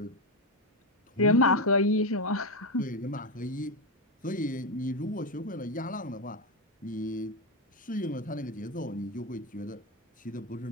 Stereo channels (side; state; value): both; normal; correlation 0.10